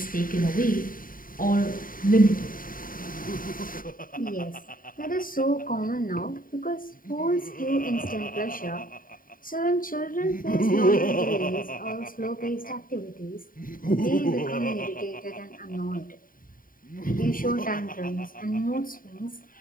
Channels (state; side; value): late; right; 0.41 ms